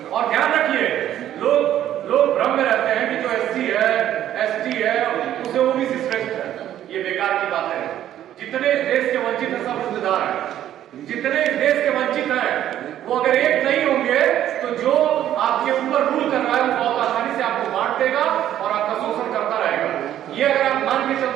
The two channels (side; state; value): left; quieter; 11.7 dB